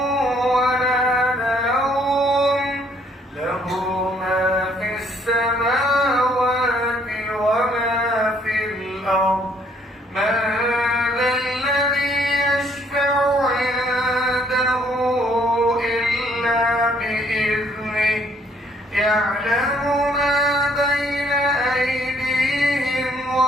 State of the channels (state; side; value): normal; both; correlation 0.64